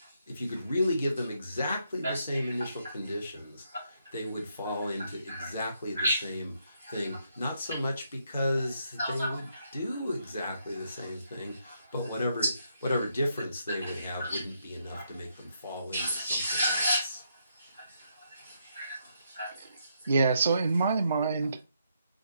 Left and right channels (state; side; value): inverted; both; correlation -0.77